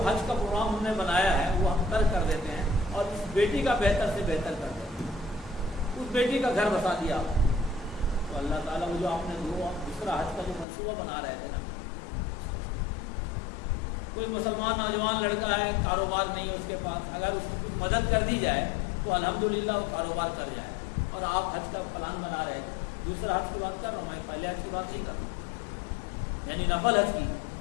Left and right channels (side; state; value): right; drops out; at 10.7 s